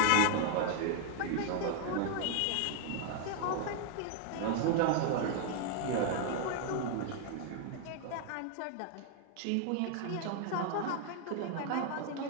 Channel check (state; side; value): different; both; correlation 0.00